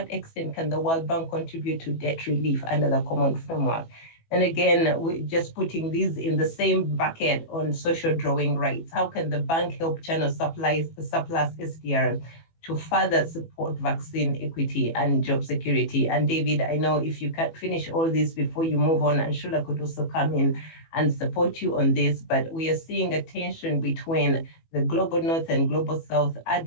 extent can the World Bank contribute to debt relief under the common framework? And again, we're just putting these in the same bucket on social drawing rights. How can the bank help channel surplus SDRs to further support vaccine equity and job security? And David, I know if you can finish all this before you move on, and Shula could also come in and support you on this, but we are seeing a tension between the Global North and Global South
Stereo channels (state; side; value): late; right; 18 ms